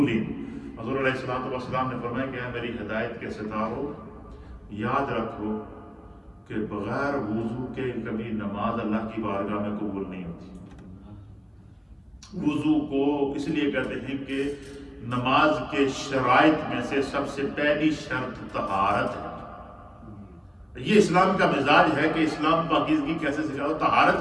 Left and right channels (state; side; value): identical; both; correlation 1.00